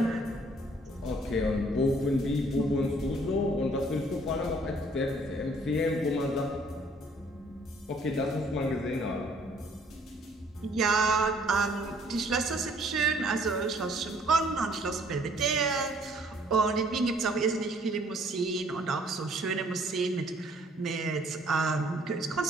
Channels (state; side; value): normal; both; correlation 0.61